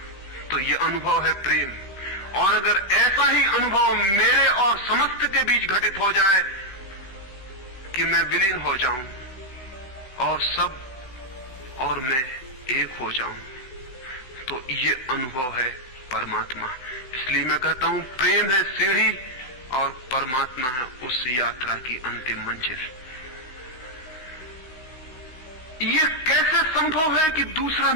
तो ये अनुभव है प्रेम। और अगर ऐसा ही अनुभव मेरे और समस्त के बीच घटित हो जाए कि मैं विलीन हो जाऊं और सब और मैं एक हो जाऊं, तो ये अनुभव है परमात्मा। इसलिए मैं कहता हूं प्रेम है सीढ़ी और परमात्मा है उस यात्रा की अंतिम मंजिल। ये कैसे संभव है कि दूसरा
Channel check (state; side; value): late; right; 16 ms